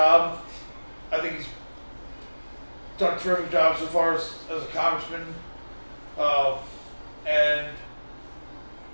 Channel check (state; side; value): inverted; both; correlation -1.00